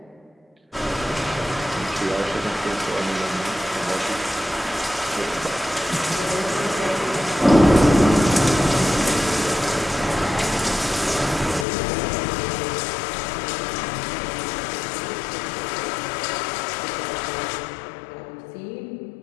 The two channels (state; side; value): drops out; right; at 11.7 s